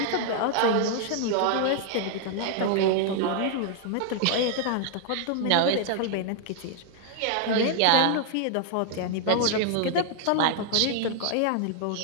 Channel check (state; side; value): different; both; correlation 0.00